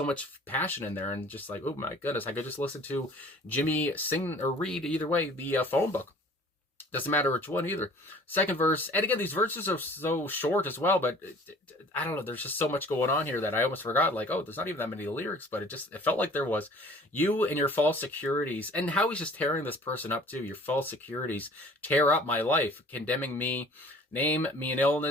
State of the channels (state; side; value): normal; both; correlation 0.49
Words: much passion in there, and just like, oh my goodness, I could just listen to Jimmy sing or read, either way, the phone book. Doesn't matter which one either. Second verse, and again, these verses are so short as well, but I don't know, there's just so much going on here that I almost forgot, like, oh, there's not even that many lyrics, but it felt like there was. You and your false securities, and how he's just tearing this person up too. Your false securities tear up my life, condemning me. Name me an